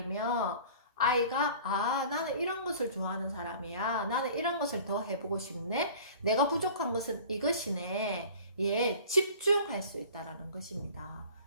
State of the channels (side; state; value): both; inverted; correlation -0.45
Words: 아이가 나는 이런 것을 좋아하는 사람이야. 나는 이런 것을 더 해보고 싶네. 내가 부족한 것은 이것이네. 예, 집중할 수 있다라는 것입니다.